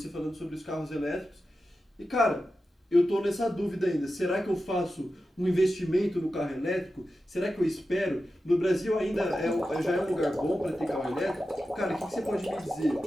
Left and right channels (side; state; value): both; normal; correlation 0.92